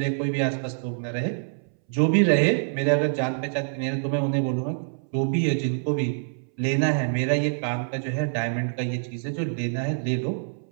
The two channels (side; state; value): left; silent; 61 dB below the other